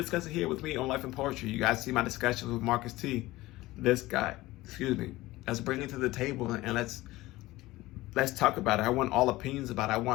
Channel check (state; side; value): quieter; right; 18.4 dB